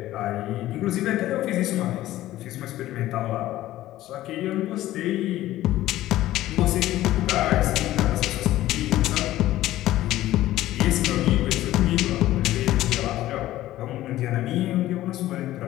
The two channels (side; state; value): right; quieter; 15.0 dB